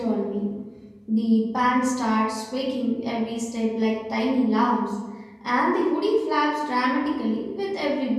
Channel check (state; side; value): identical; both; correlation 1.00